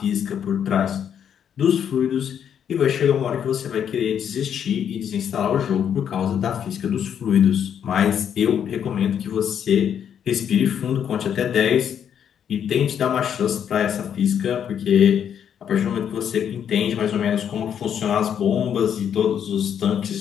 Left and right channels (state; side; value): quieter; right; 8.7 dB